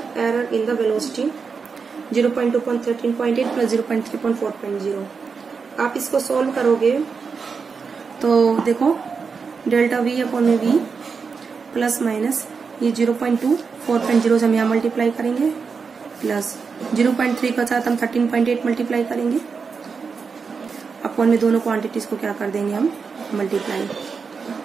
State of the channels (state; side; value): quieter; left; 5.4 dB